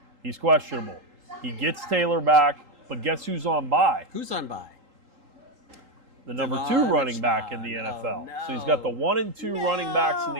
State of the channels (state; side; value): late; left; 3.8 ms